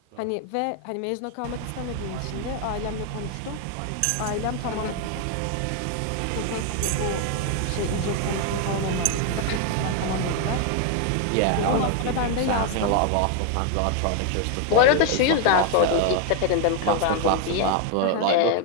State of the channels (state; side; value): different; both; correlation 0.01